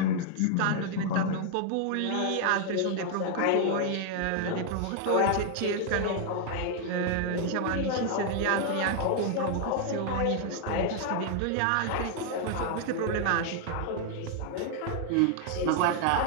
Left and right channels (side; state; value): both; different; correlation 0.00